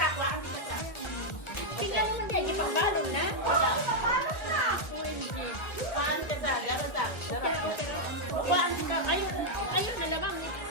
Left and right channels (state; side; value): late; right; 1.4 ms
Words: kuha. Tignan mo na kayo, pagbalon na. Wala. Balon na. Kuhaan ka sa, gano'n ka. Kuhaan ka. Ayun na naman.